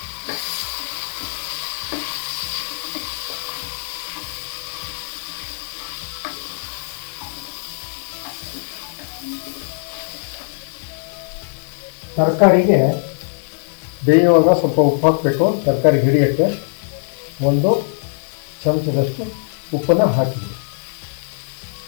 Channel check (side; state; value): right; silent; digital silence